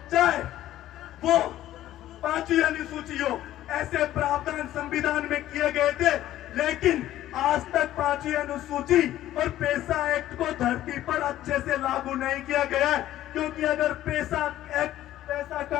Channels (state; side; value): quieter; right; 13.6 dB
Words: चाहे वो 5वीं अनुसूची हो, ऐसे प्रावधान संविधान में किए गए थे, लेकिन आज तक 5वीं अनुसूची और पैसा एक्ट को धरती पर अच्छे से लागू नहीं किया गया है। क्योंकि अगर पैसा एक्ट, पैसा